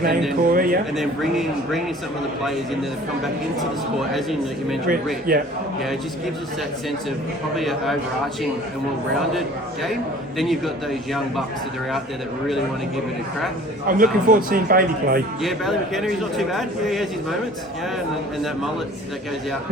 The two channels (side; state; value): both; normal; correlation 0.48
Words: there, Corey, and then bringing some of the players in that have come back into the sport, as in you mentioned Rick. It just gives us that sense of probably an overarching and well-rounded game. Then you've got those young bucks that are out there that really want to give it a crack. I'm looking forward to seeing Bailey play. Yeah, Bailey McKenna, he's not too bad. Yeah, he has his moments. Yeah, and that mullet that goes out